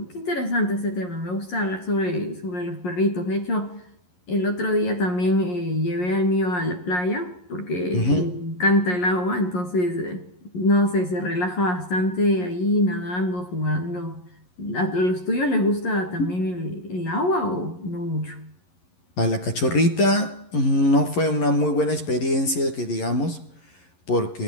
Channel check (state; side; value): late; right; 11 ms